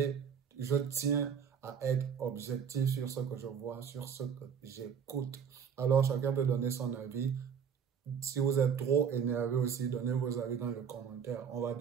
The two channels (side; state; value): left; quieter; 7.2 dB